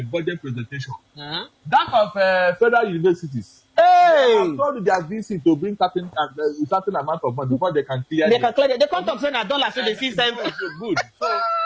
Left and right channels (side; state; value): both; identical; correlation 1.00